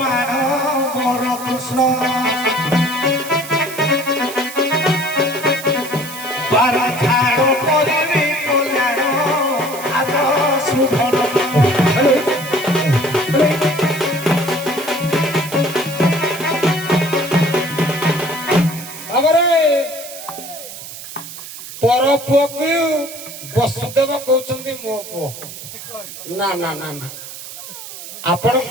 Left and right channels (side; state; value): right; noise; hiss, 12 dB below the sound